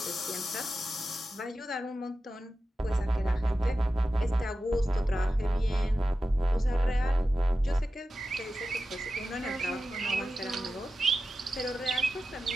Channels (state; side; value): normal; both; correlation 0.92